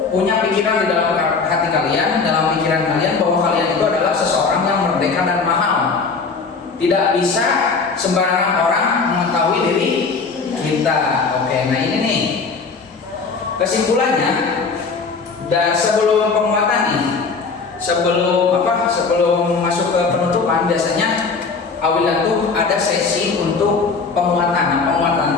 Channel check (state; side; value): quieter; right; 4.7 dB